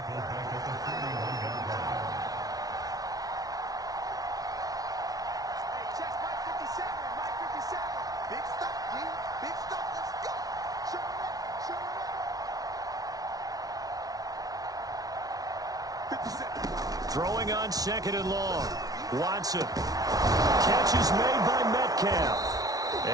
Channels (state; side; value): late; left; 0.18 ms